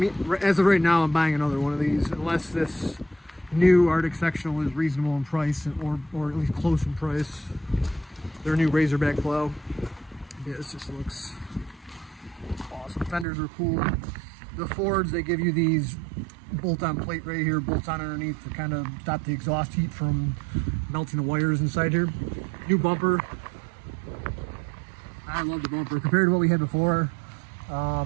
as of right now, I'm buying another one of these, unless this new Arctic sectional is reasonable in price, or at least close in price. Their new Razorback plow. Yeah, this just looks awesome. Fenders are cool. The Fords, they give you these bolt-on plate right here, bolts on underneath to kind of stop the exhaust heat from melting the wires inside here. New bumper. I love the bumper compared to what we had before. I'll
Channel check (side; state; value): left; drops out; at 13.2 s